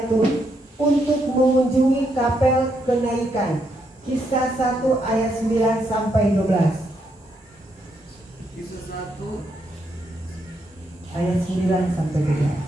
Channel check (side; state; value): both; normal; correlation 0.78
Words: untuk mengunjungi kapel kenaikan. Kisah 1 ayat 9 sampai 12. Kisah 1 Ayat 9 sampai 12.